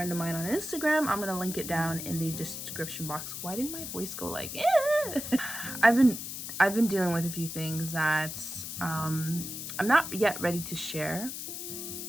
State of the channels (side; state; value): left; noise; hiss, 7 dB below the sound